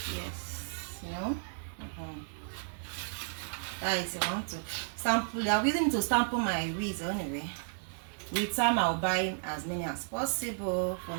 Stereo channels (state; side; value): silent; left; digital silence